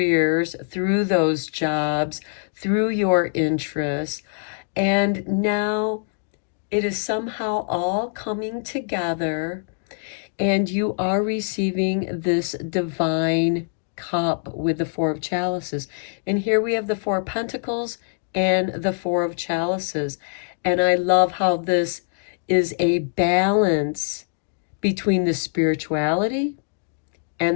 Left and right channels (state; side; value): silent; right; digital silence